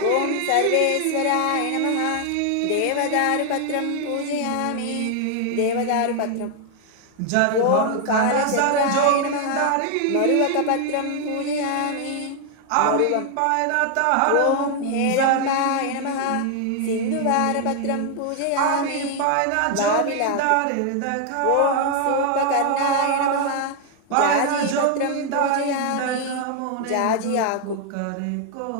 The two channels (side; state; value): both; different; correlation 0.00